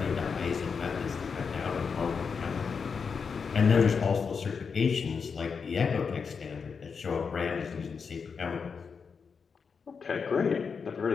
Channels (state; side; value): quieter; right; 5.7 dB